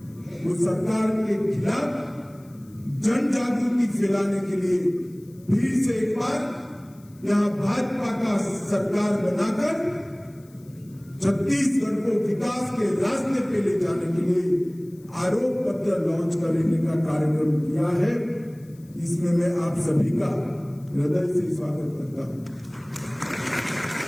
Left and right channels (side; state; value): left; noise; hiss, 29 dB below the sound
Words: वो सरकार के खिलाफ जन जागृति फैलाने के लिए फिर से एक बार यहां भाजपा का सरकार बनाकर छत्तीसगढ़ को विकास के रास्ते पे ले जाने के लिए आरोप पत्र लॉन्च करने का कार्यक्रम किया है। इसमें मैं आप सभी का हृदय से स्वागत करता हूं।